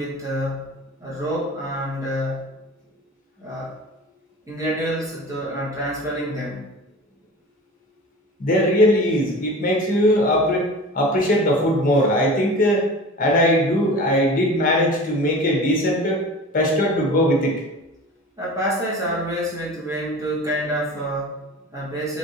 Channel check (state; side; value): normal; both; correlation 0.37